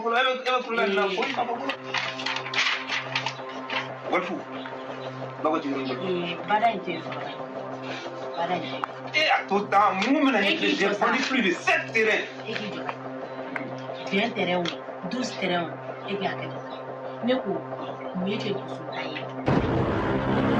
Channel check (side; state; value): both; identical; correlation 1.00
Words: ebe kula na fui ma kokolo. Walfu. Bago ti ni. Bada inte so. Bada inte. Tout temps, moi j'ai vendu plus de 7 terrains. Bien terrain, 12 terrains et bien que. Ne ko miye ke kusutai.